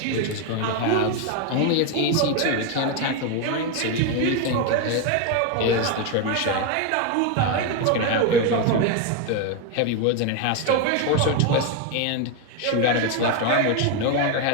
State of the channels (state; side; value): different; both; correlation 0.02